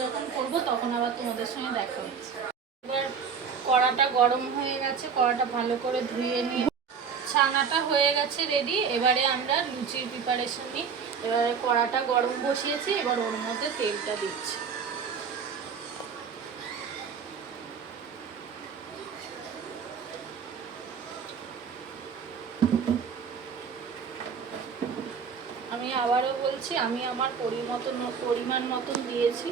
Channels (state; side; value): quieter; left; 6.3 dB